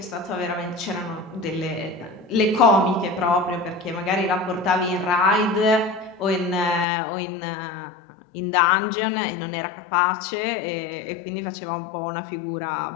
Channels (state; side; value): drops out; right; at 6.9 s